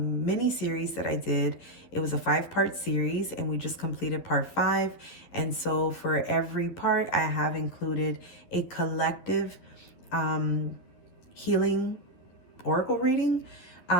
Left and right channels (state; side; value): late; right; 11 ms